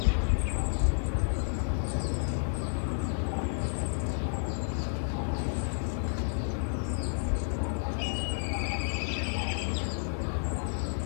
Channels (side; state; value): right; silent; 57 dB below the other